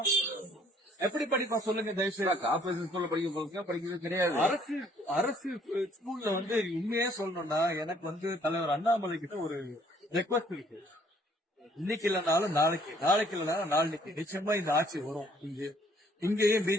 எப்படி படிப்பான் சொல்லுங்க தயவுசெய்து. கார்பரேஷன் ஸ்கூல்ல படிக்கிறது கிடையாது. அரசு ஸ்கூல்ல வந்து உண்மையே சொல்லணும்னா எனக்கு வந்து தலைவர் அண்ணாமலை கிட்ட ஒரு ரெக்வஸ்ட் இருக்கு. இன்னைக்கு இல்லைனாலும் நாளைக்கு, நாளைக்கு இல்லைனாலும் நாளைக்கு நிச்சயமா இந்த ஆட்சி வரும். இங்கேயும்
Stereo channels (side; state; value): both; normal; correlation 0.62